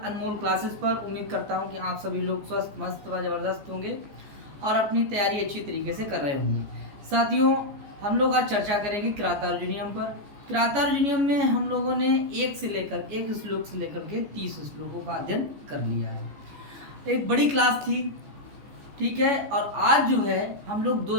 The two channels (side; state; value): left; late; 14 ms